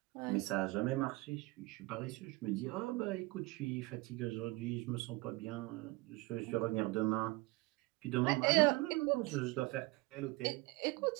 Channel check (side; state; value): left; quieter; 22.5 dB